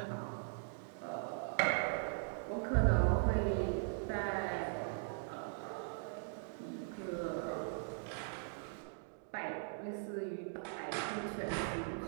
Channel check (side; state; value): left; silent; digital silence